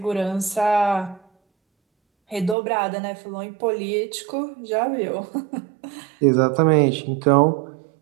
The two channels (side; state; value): left; drops out; at 2.6 s